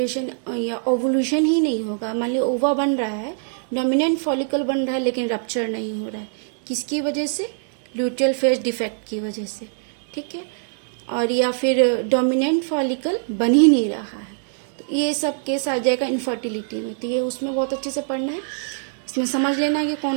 या ओवुलेशन ही नहीं होगा। मान लीजिए ओवा बन रहा है, डोमिनेंट फॉलिकल बन रहा है लेकिन रप्चर नहीं हो रहा है, किसकी वजह से, लुटियल फेज डिफेक्ट की वजह से। ठीक है, और या फिर डोमिनेंट फॉलिकल बन ही नहीं रहा है, तो ये सब केस आ जाएगा इनफर्टिलिटी में। तो ये उसमें बहुत अच्छे से पढ़ना है, इसमें समझ लेना है कि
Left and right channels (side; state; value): left; silent; 63 dB below the other